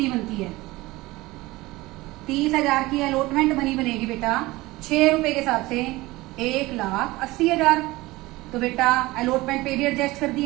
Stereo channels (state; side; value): quieter; left; 20.0 dB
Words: बनती है? 30,000 की अलॉटमेंट मनी बनेगी बेटा 6 रुपए के हिसाब से 1,80,000। तो बेटा अलॉटमेंट पे भी एडजस्ट कर